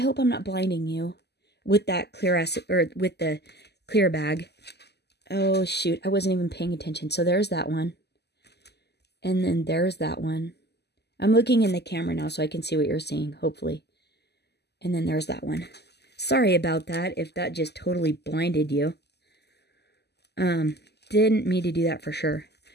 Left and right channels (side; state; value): right; late; 0.49 ms